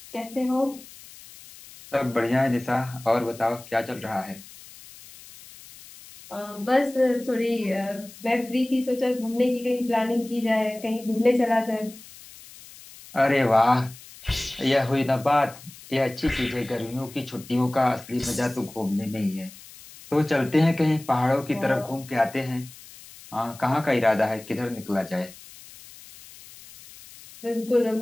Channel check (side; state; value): left; noise; hiss, 19 dB below the sound